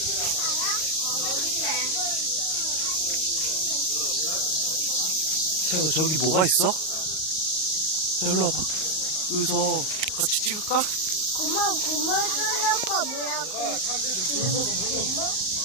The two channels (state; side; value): late; right; 38 ms